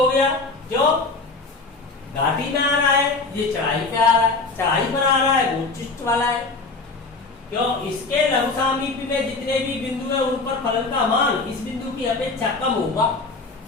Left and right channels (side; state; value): right; quieter; 3.8 dB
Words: गया, जो घाटी में आ रहा है, ये चढ़ाई पे आ रहा है, चढ़ाई पर आ रहा है, वो उच्चिष्ट वाला है। क्यों? इसके लघु सामीप्य में जितने भी बिंदु है उन पर फलन का मान इस बिंदु की अपेक्षा कम होगा।